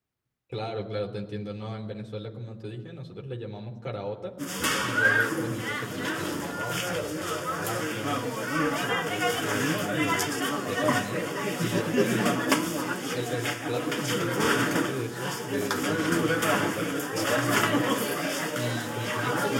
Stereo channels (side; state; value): both; identical; correlation 1.00